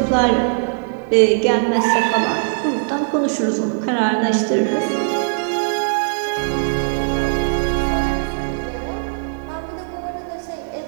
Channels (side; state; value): left; silent; digital silence